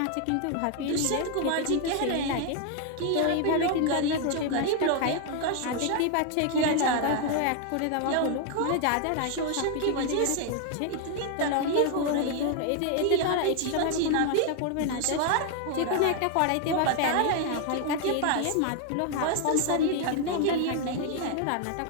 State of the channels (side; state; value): both; different; correlation 0.00